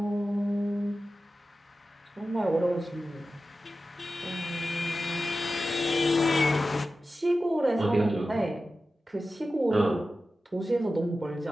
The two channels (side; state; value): both; normal; correlation 0.94